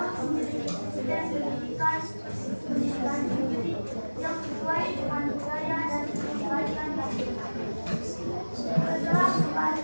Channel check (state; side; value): inverted; both; correlation -1.00